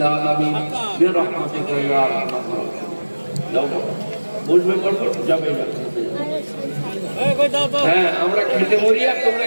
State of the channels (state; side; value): inverted; both; correlation -1.00